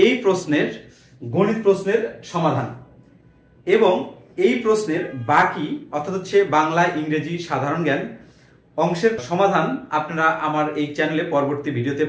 প্রশ্নের গণিত প্রশ্নের সমাধান এবং এই প্রশ্নের বাকি অর্থাৎ হচ্ছে বাংলা, ইংরেজি, সাধারণ জ্ঞান অংশের সমাধান আপনারা আমার এই চ্যানেলে পরবর্তী ভিডিওতে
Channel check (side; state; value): both; identical; correlation 1.00